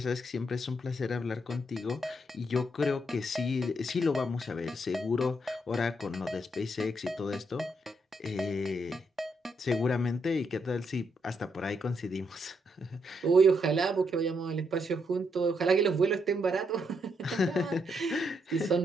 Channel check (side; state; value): both; normal; correlation 0.77